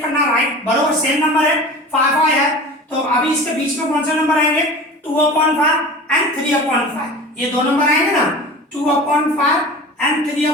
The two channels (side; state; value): both; normal; correlation 0.36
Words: करना, राइट, बराबर सेम नंबर है 5 5 है, तो अभी इसके बीच में कौन से नंबर आएंगे 2/5 एंड 3/5। ये दो नंबर आएंगे ना 2/5 एंड